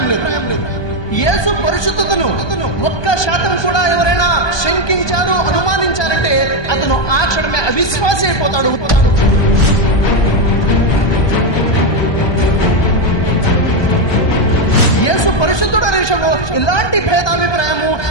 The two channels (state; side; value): late; right; 1.2 ms